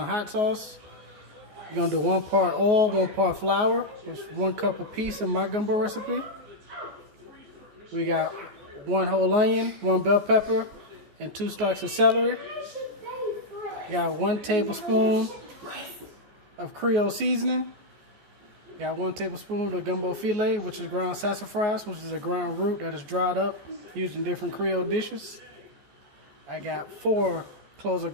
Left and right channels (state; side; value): late; left; 14 ms